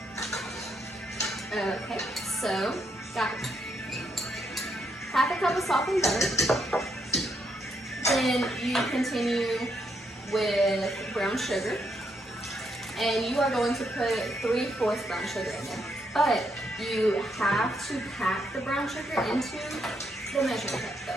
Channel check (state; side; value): normal; both; correlation 0.77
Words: Okay, so got half a cup of softened butter. Then you continue with brown sugar, and you are going to put 3/4 brown sugar in there. But you have to pack the brown sugar into the measuring cup